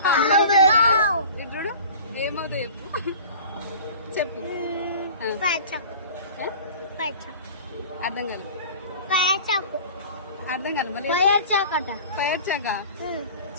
ఇప్పుడు ఏమవుతావు చెప్పు. అర్థం కాదు. అర్థం కాదు. మళ్ళీ ఫైర్ చాక.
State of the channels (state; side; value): inverted; both; correlation -0.41